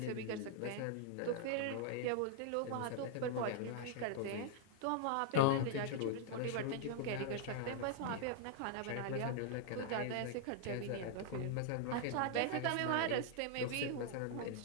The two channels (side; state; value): both; different; correlation -0.01